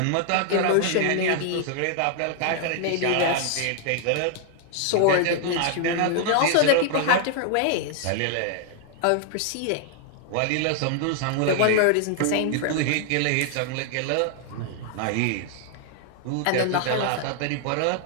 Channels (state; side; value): different; both; correlation 0.00